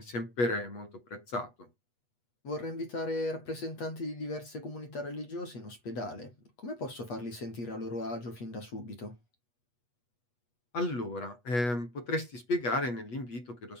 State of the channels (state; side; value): late; right; 8.3 ms